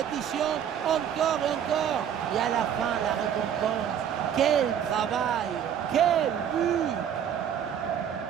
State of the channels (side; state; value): left; quieter; 9.0 dB